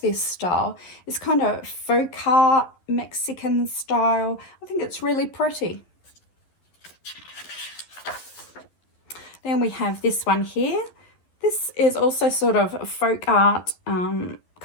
this style. It's kind of folk art, Mexican style. I think it's really pretty. Then we have this one here. This is also sort of a folk art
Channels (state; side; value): late; right; 11 ms